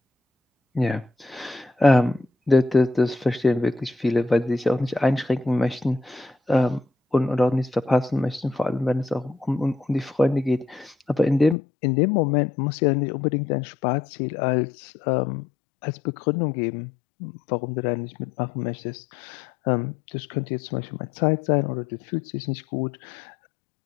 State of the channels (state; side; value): drops out; right; at 11.6 s